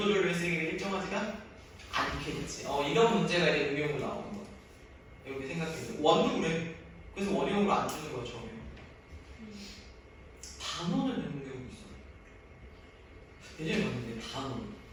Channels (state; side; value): identical; both; correlation 1.00